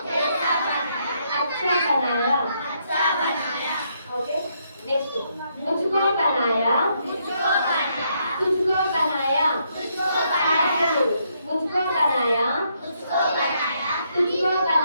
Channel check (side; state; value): both; inverted; correlation -0.75